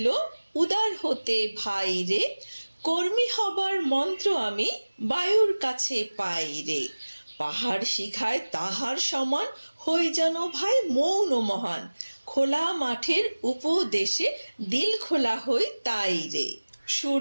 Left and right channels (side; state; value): both; inverted; correlation -1.00